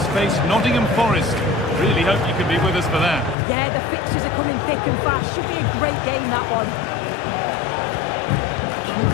face Nottingham Forest. Really hope you can be with us for that. Yeah, the fixtures are coming thick and fast. Should be a great game, that one.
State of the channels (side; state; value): right; drops out; at 3.4 s